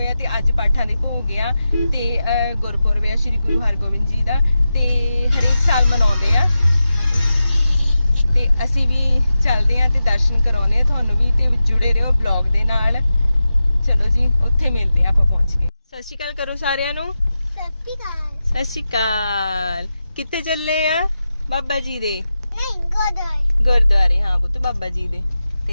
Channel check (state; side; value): inverted; both; correlation -0.92